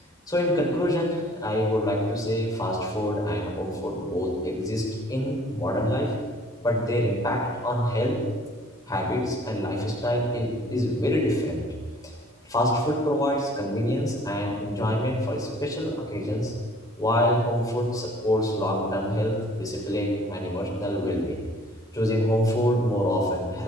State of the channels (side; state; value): both; normal; correlation 0.54